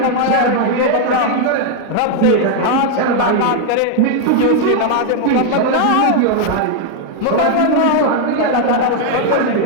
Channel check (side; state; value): both; different; correlation 0.00